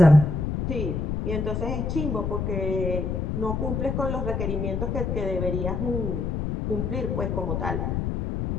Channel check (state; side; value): noise; left; rumble, 1 dB below the sound